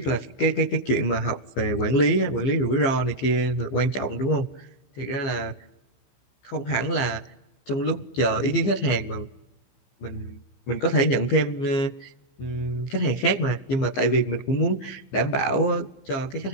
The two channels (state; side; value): late; right; 15 ms